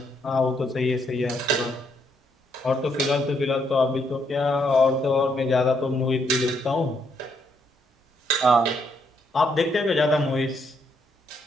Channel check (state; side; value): normal; both; correlation 0.74